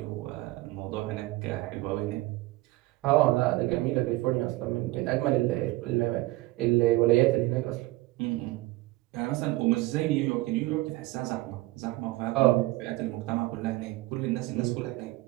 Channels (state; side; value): quieter; left; 19.6 dB